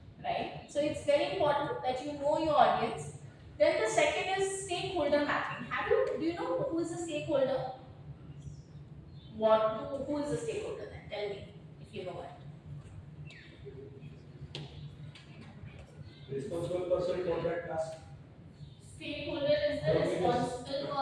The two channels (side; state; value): both; identical; correlation 1.00